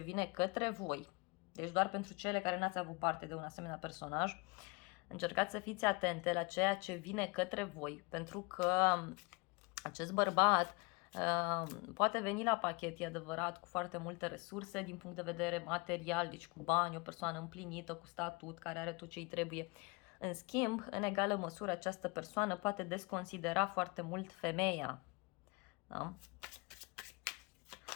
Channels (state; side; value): quieter; right; 28.0 dB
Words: către voi. Deci doar pentru cele care n-ați avut parte de un asemenea personaj, încercați să fiți atente la ceea ce vine către voi, pentru că acest bărbat poate veni la pachet, e adevărat, cu foarte multe resurse din punct de vedere material, deci cu bani, o persoană împlinită, cu statut, care are tot ce îi trebuie. În schimb, în egală măsură, această persoană poate desconsidera foarte mult femeia. Da?